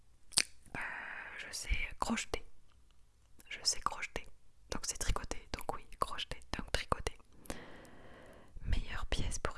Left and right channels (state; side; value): identical; both; correlation 1.00